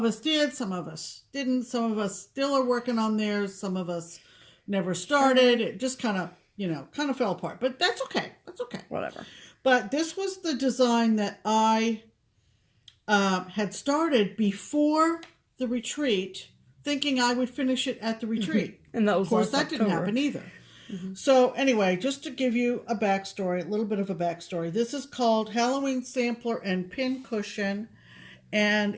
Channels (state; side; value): identical; both; correlation 1.00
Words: us did, some of us didn't. Some of us still are working on theirs. Some of us never started. It just kind of fell apart. But that's okay. That's okay. Whatever. But this was the design that I had started before the retreat, thinking I would finish it at the retreat. And that was, of course, that last didn't October. happen either. So anyway, just to give you a backstory, a little bit of a backstory. This is called Halloween Sampler and Pin Cushion, and